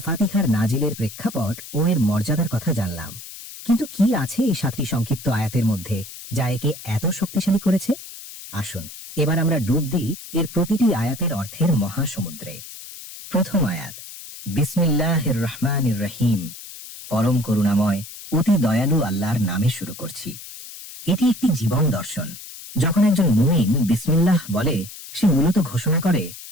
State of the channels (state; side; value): noise; left; hiss, 14 dB below the sound